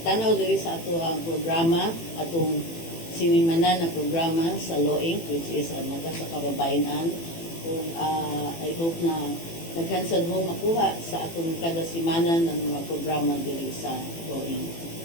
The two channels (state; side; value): late; right; 18 ms